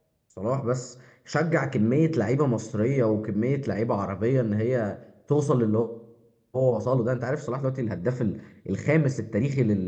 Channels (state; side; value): identical; both; correlation 1.00